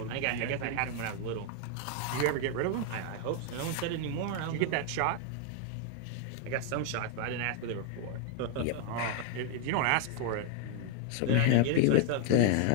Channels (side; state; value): both; different; correlation 0.00